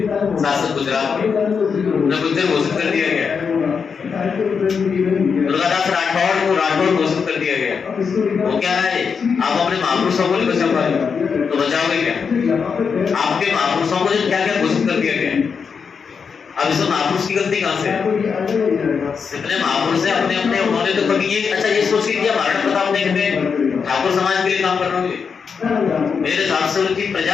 शासक गुजरात के, उन्हें गुज्जर घोषित कर दिया गया। दुर्गादास राठौड़ को राठौड़ घोषित कर दिया गया। वो क्या है, आप अपने महापुरुषों को नहीं बचा पाए तो बचाओगे क्या? आपके महापुरुषों को क्या क्या घोषित कर दिया गया। अब इसमें महापुरुष की गलती कहाँ से है? जितने महापुरुष है अपने अपने उन्होंने तो कभी ये अच्छा ये सोच के किया महाराणा प्रताप ने ठाकुर समाज के लिए काम करना होंगे, मेरे हिसाब से उनकी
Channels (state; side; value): quieter; right; 6.0 dB